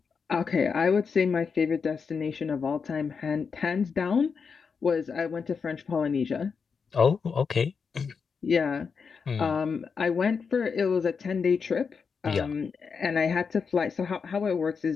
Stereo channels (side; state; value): right; quieter; 5.7 dB